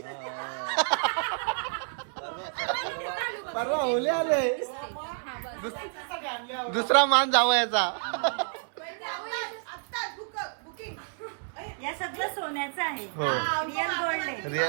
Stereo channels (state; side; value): silent; left; digital silence